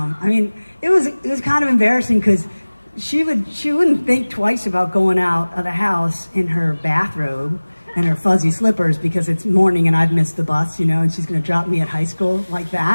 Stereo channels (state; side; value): inverted; both; correlation -1.00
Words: mean, it was kind of embarrassing because she wouldn't think twice about going out of the house in her bathrobe and her fuzzy slippers because it's morning and I've missed the bus, and she's going to drop me at high school like